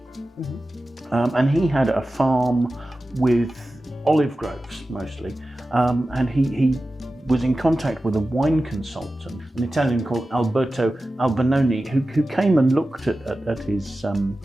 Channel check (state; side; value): normal; both; correlation 0.94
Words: and he had a farm with olive groves mostly, and he was in contact with a wine consultant, an Italian called Alberto Albinoni, who came and looked at his